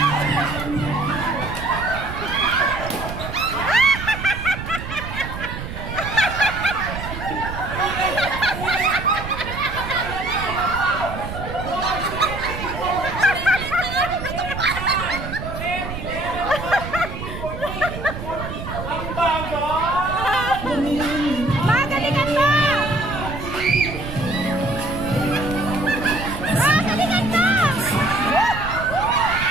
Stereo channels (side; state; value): right; noise; rumble, 8 dB below the sound